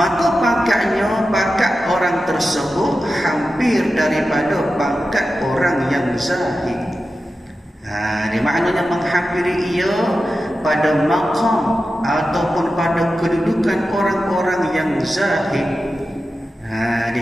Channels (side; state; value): both; normal; correlation 0.92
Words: pangkat orang tersebut hampir daripada pangkat orang yang zahid. Dia maknanya menghampiri ia pada maqam ataupun pada kedudukan orang-orang yang zahid.